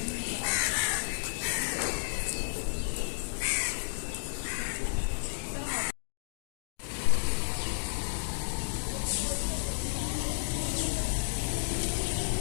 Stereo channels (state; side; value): silent; right; digital silence